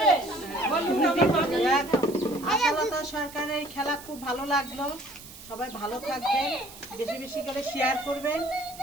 আশালতা সরকারের এই খেলা খুব ভালো লাগলো। সবাই ভালো থাকবেন, বেশি বেশি করে শেয়ার করবেন,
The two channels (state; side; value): noise; right; hiss, 17 dB below the sound